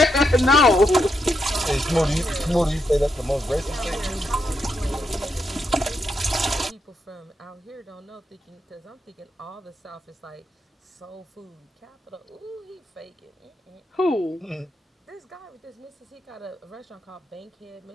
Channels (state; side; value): normal; both; correlation 0.82